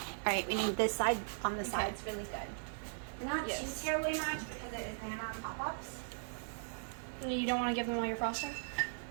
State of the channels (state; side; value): silent; left; digital silence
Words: right, we need this side on the side. Okay. It's really good. Not Yes. too terribly much because it is banana on pop-ups. You don't want to give them all your frosting?